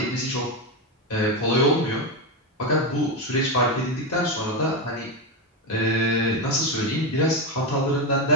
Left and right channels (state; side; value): normal; both; correlation 0.12